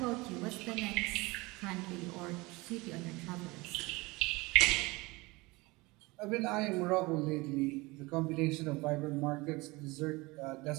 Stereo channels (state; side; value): quieter; left; 23.4 dB